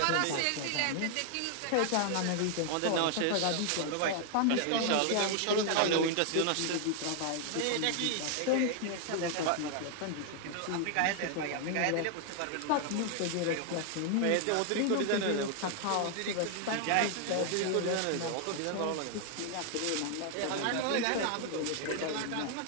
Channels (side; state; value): both; different; correlation 0.00